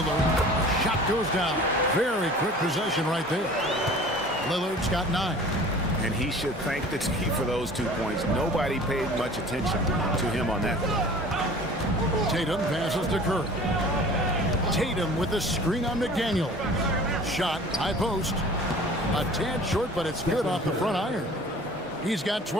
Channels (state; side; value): normal; both; correlation 0.44